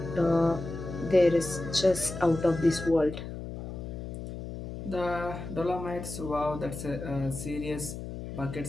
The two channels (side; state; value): left; noise; hum, 8 dB below the sound